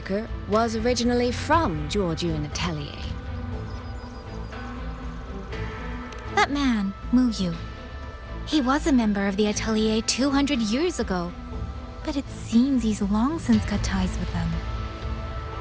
was originally from Jiujiun Atelier. That man, Mu Yu. He was a member of the Atelier 200 years ago, but it seems he's long since cut ties with them.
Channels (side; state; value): both; identical; correlation 1.00